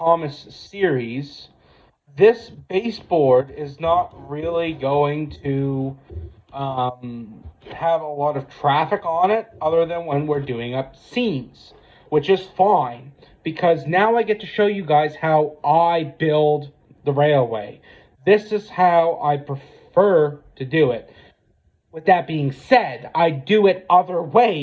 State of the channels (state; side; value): identical; both; correlation 1.00